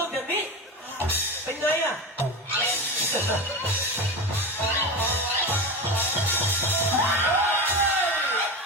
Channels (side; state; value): both; normal; correlation 0.23